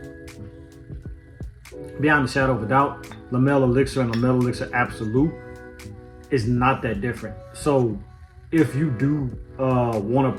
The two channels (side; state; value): both; identical; correlation 1.00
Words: beyond a shadow of a doubt, La Mer Elixir and La Mer Elixir Absolu is not that different. So if you do want